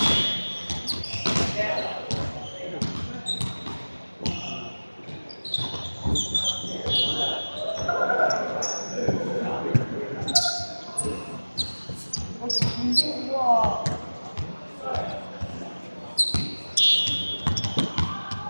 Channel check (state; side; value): inverted; both; correlation -1.00